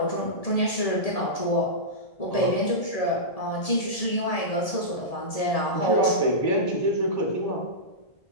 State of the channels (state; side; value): late; right; 1.7 ms